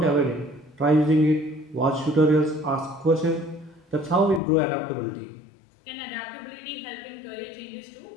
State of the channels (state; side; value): drops out; right; at 4.4 s